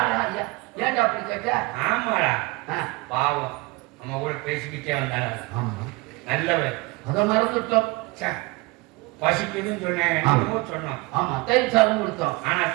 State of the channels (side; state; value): left; quieter; 23.7 dB